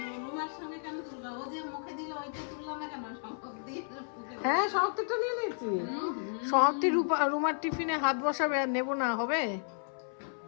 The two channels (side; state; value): right; silent; 56 dB below the other